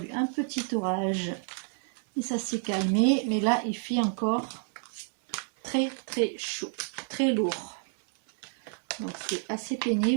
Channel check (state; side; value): silent; left; 58 dB below the other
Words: un petit orage et ça s'est calmé. Mais là, il fait encore très très chaud, très lourd. Donc, c'est assez